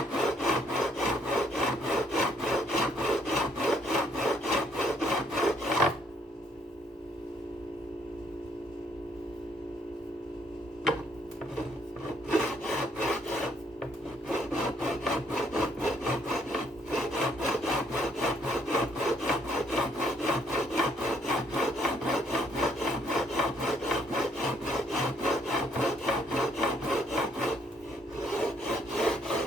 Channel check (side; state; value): both; normal; correlation 0.68